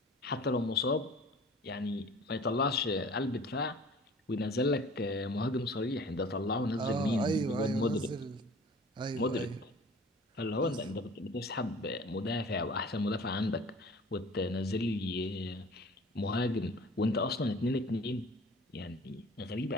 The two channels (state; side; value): normal; both; correlation 0.46